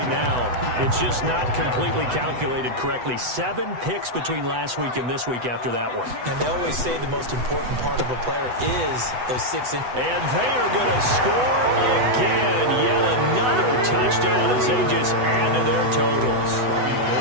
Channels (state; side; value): late; left; 8.0 ms